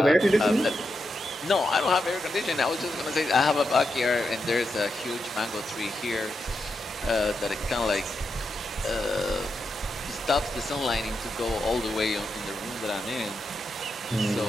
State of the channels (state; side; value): normal; both; correlation 0.85